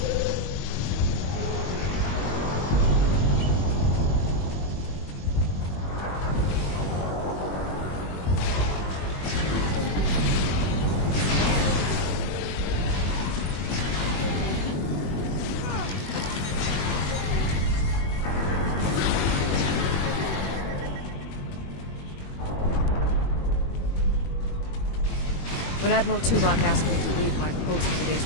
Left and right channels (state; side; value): late; right; 21 ms